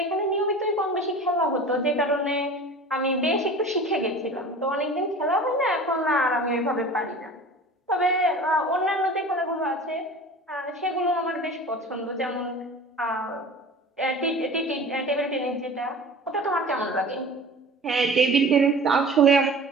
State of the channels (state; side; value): normal; both; correlation 0.39